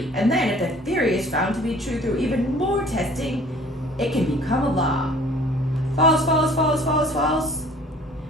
and then if the theory is found to be true through even more testing, it can become a law. False, false, false, false, false.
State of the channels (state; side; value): normal; both; correlation 0.52